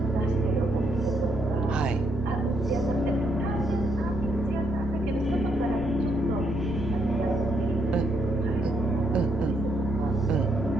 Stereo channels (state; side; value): noise; right; rumble, 15 dB below the sound